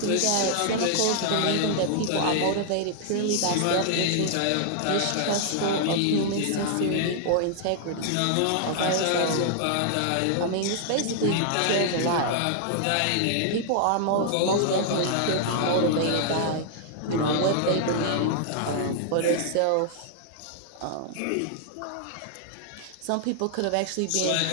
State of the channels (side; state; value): both; different; correlation -0.01